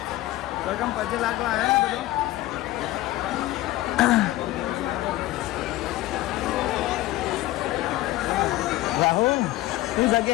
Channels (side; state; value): right; quieter; 16.7 dB